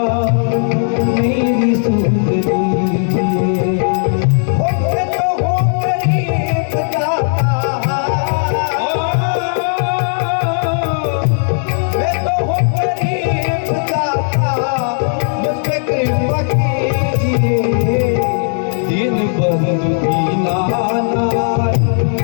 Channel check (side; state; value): right; silent; digital silence